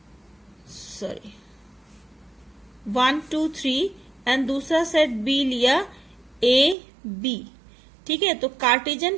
3 एंड दूसरा सेट बी लिया ए बी। ठीक है, तो Cartesian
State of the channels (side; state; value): left; drops out; at 6.8 s